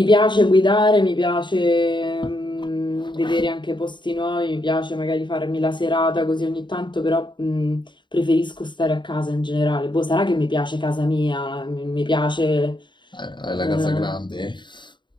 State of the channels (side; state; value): right; late; 0.23 ms